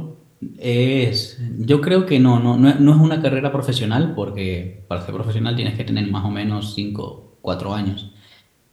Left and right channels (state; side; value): identical; both; correlation 1.00